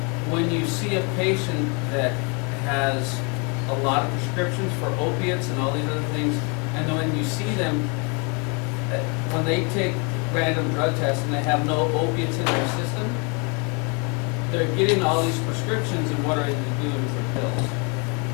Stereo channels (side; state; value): right; quieter; 33.5 dB